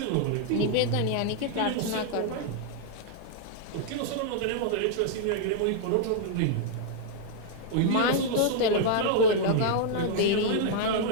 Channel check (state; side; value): different; both; correlation -0.01